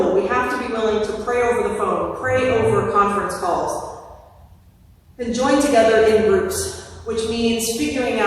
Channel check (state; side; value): identical; both; correlation 1.00